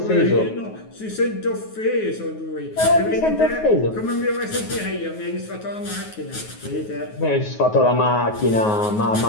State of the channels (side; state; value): right; late; 9.4 ms